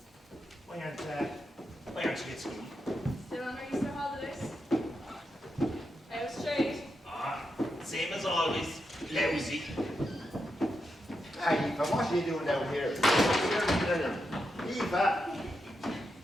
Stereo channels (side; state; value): both; normal; correlation 0.85